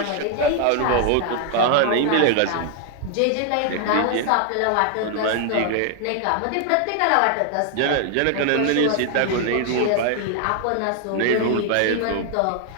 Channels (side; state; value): both; different; correlation 0.00